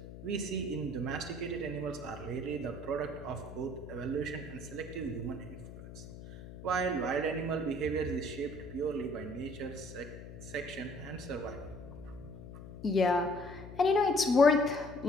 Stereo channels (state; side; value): noise; left; hum, 13 dB below the sound